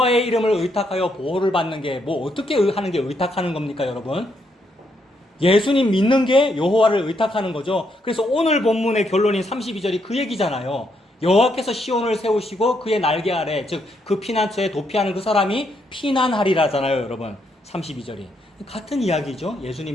이름을 의탁하여 보호를 받는 게 뭐 어떻게 하는 게 의탁하는 겁니까, 여러분? 예수님 믿는 게 여호와를 의탁하는 거죠. 그래서 오늘 본문의 결론인 32절이 그 얘기잖아요. 여호와께서 시온을 세우시고 그의 날개 아래, 즉 그 피난처에 도피하는 그 사람이 피난하리라잖아요, 여러분. 32절이. 같은 이야기죠.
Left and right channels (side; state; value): both; normal; correlation 0.76